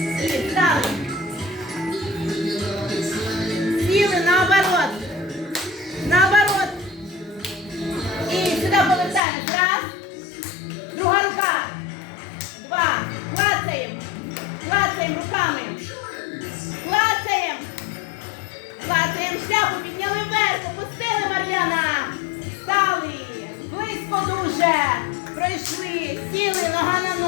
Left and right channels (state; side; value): drops out; right; at 9.2 s